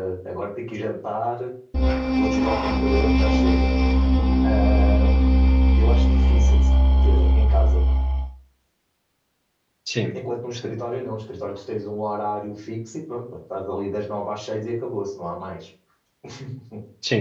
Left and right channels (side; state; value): both; identical; correlation 1.00